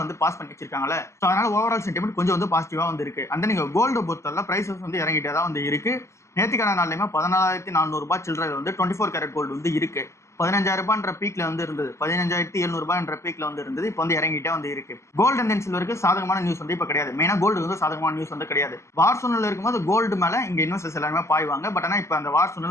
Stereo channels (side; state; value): right; late; 0.13 ms